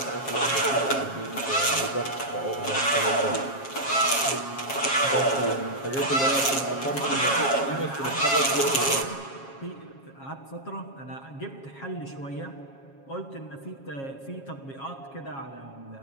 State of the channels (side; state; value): right; late; 7.4 ms